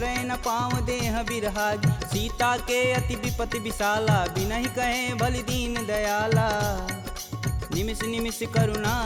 न पाँव देह बिरहागी। सीता के अति विपति विशाला, बिनहि कहे भलि दीन दयाला। निमिष निमिष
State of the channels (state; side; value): identical; both; correlation 1.00